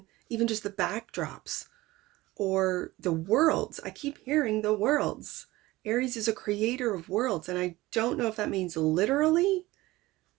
even just the backdrops or the worlds. I keep hearing the worlds. Aries is a creator of worlds, and I don't know if that means literally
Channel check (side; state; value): left; quieter; 18.8 dB